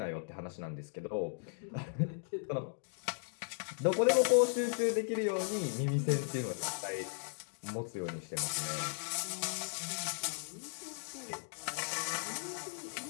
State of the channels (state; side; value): silent; right; digital silence